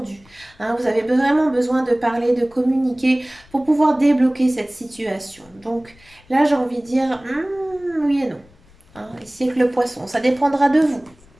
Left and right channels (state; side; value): noise; left; rumble, 28 dB below the sound